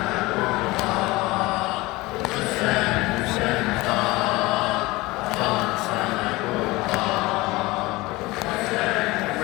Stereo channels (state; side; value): quieter; right; 21.3 dB